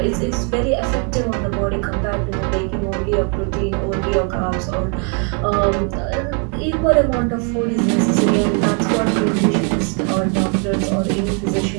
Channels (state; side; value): quieter; left; 37.6 dB